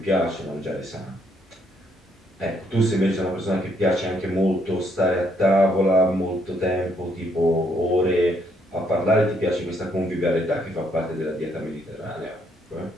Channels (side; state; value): both; normal; correlation 0.71